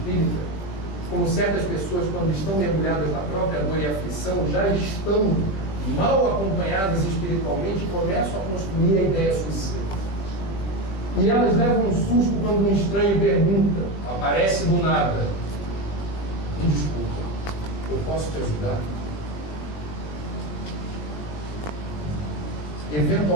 como certas pessoas, quando estão mergulhadas na própria dor e aflição, já estão mal acompanhadas espiritualmente e começam a construir a ideia suicida. E elas levam um susto quando um estranho pergunta, aparece do nada: me desculpa, eu posso te ajudar?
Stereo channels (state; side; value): late; right; 21 ms